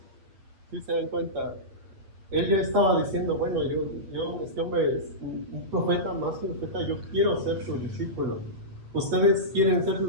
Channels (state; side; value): late; left; 8.6 ms